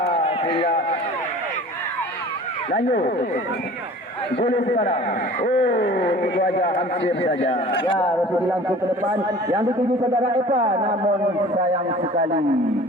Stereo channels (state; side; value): normal; both; correlation 0.44